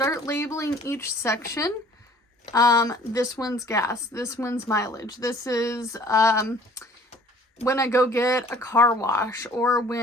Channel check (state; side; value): normal; both; correlation 0.53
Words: labeling each section. This one's gas. This one's mileage. This is when I go get a car wash, or